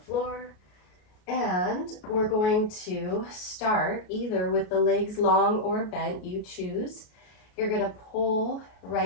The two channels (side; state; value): right; late; 33 ms